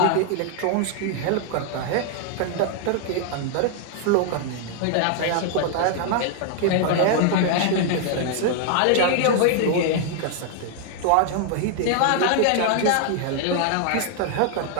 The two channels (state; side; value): different; both; correlation 0.00